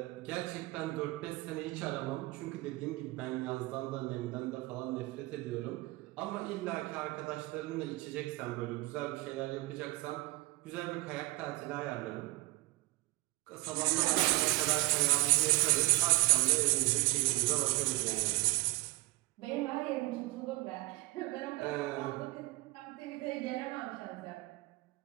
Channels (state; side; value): quieter; left; 21.4 dB